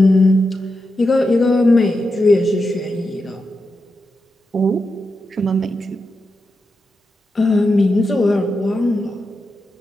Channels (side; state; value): both; normal; correlation 0.88